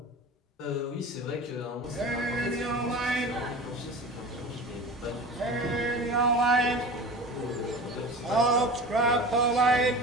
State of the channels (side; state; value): both; normal; correlation 0.35